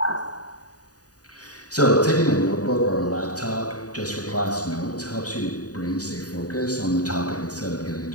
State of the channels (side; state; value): right; late; 0.68 ms